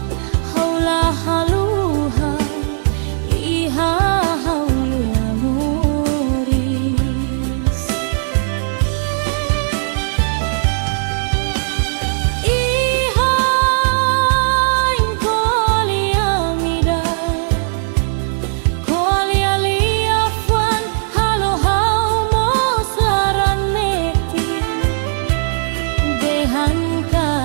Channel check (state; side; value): silent; left; 68 dB below the other